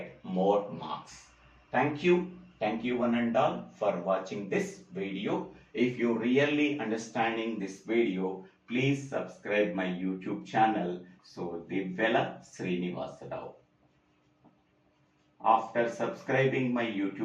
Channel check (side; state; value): both; identical; correlation 1.00